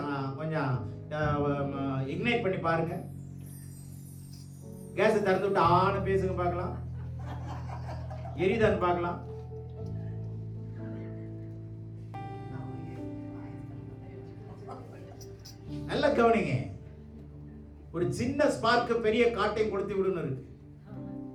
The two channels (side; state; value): both; identical; correlation 1.00